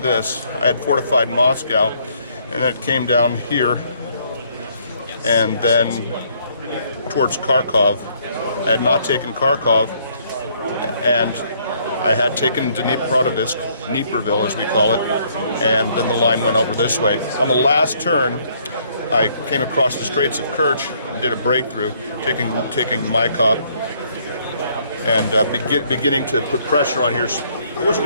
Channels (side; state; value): both; inverted; correlation -0.66